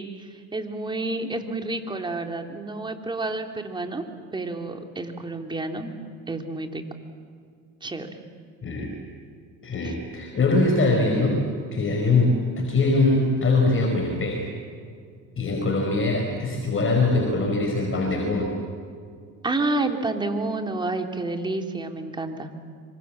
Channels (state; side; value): normal; both; correlation 0.40